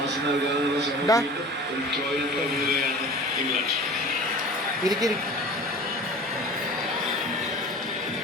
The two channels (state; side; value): normal; both; correlation 0.40